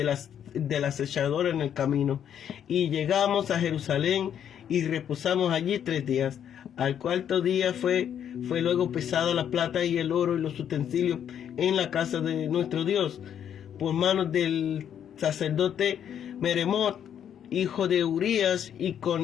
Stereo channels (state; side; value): quieter; right; 9.2 dB